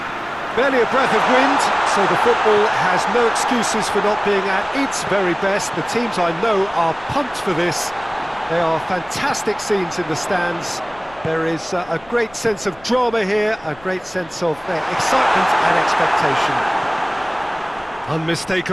Barely a breath of wind, so the football has no excuses for not being at its very best. The teams I know are pumped for this. There are fantastic scenes in the stands. There is a great sense of drama here, a great sense of excitement and expectation.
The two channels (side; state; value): left; noise; rumble, 25 dB below the sound